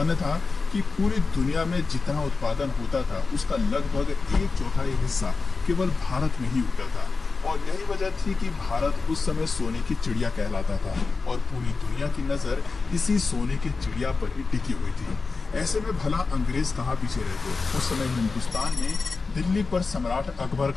था कि पूरी दुनिया में जितना उत्पादन होता था उसका लगभग 1/4 हिस्सा केवल भारत में ही उगता था और यही वजह थी कि भारत उस समय सोने की चिड़िया कहलाता था और पूरी दुनिया की नजर इसी सोने की चिड़िया पर ही टिकी हुई थी। ऐसे में भला अंग्रेज कहाँ पीछे रहते। उस समय हिंदुस्तान में दिल्ली पर सम्राट अकबर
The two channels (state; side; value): quieter; right; 4.3 dB